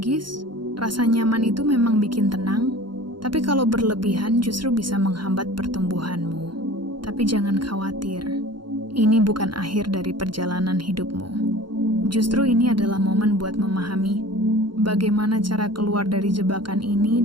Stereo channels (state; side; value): late; left; 0.72 ms